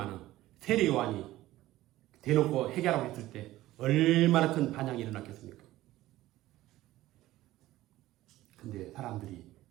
세례 요한이 대놓고 회개하라고 했을 때 얼마나 큰 반향이 일어났겠습니까? 근데 사람들이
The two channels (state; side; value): quieter; left; 16.0 dB